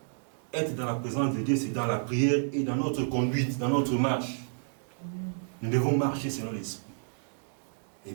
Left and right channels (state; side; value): silent; left; digital silence